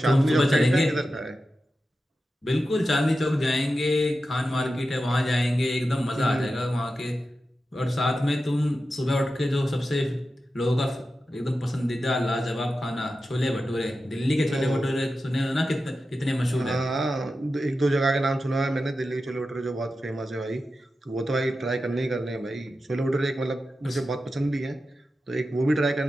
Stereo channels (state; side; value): normal; both; correlation 0.91